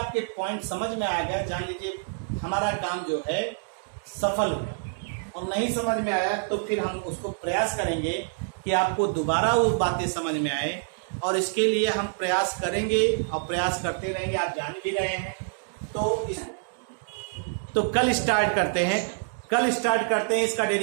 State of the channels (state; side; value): silent; left; digital silence